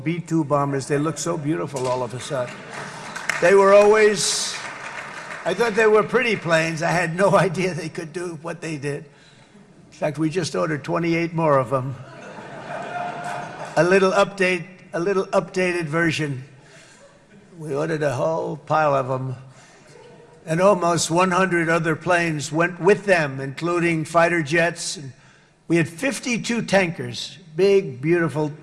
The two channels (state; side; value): identical; both; correlation 1.00